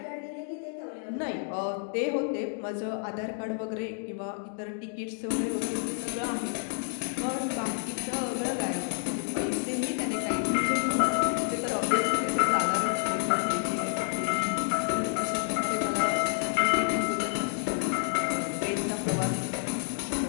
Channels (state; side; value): silent; right; 58 dB below the other